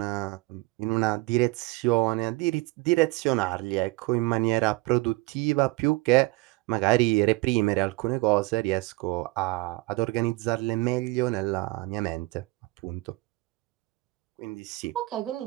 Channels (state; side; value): quieter; left; 23.1 dB